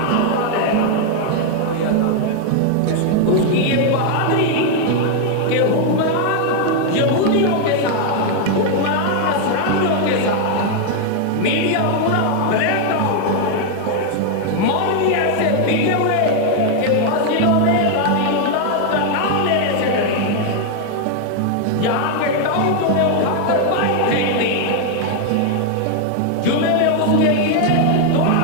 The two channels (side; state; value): both; different; correlation 0.00